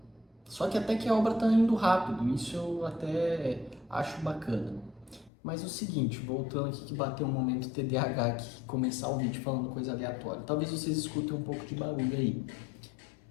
Só que até que a obra tá indo rápido, isso eu até acho bacana. Mas o seguinte, voltando aqui que bateu um momento TDAH aqui, começar o vídeo falando coisa aleatória. Talvez vocês escutem um pouco de barulho aí.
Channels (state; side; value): drops out; right; at 5.3 s